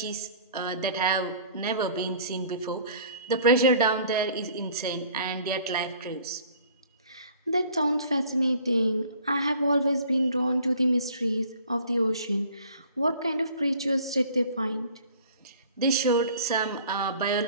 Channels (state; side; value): inverted; both; correlation -0.51